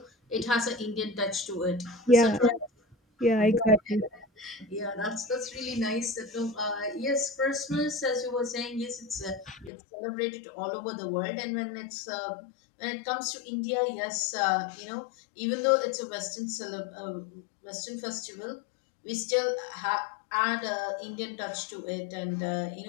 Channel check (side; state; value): right; drops out; at 9.7 s